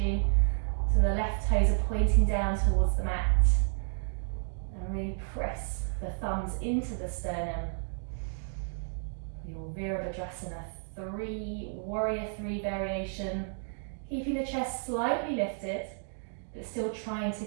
So the left toes are pointing down towards the mat. And really press the thumbs into the sternum. Your Virabhadrasana 3, warrior 3 variation. Keeping the chest slightly lifted, but still trying to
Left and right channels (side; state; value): left; silent; digital silence